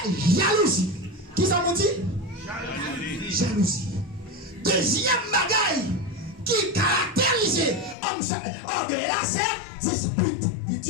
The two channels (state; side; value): drops out; right; at 8.0 s